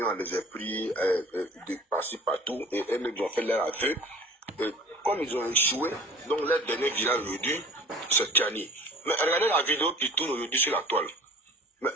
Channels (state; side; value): normal; both; correlation 0.44